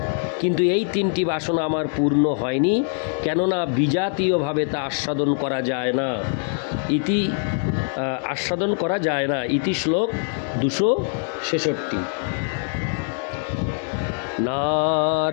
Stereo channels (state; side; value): silent; right; 55 dB below the other